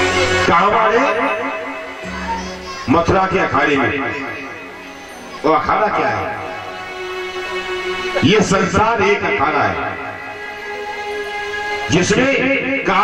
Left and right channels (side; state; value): both; identical; correlation 1.00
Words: कहां मारे? मथुरा के अखाड़े में। वो अखाड़ा क्या है? ये संसार एक अखाड़ा है जिसमें